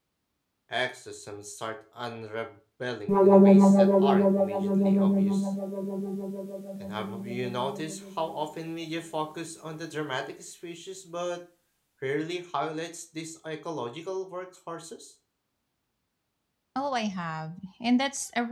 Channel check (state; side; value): identical; both; correlation 1.00